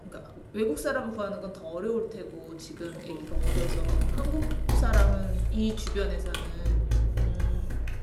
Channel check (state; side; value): identical; both; correlation 1.00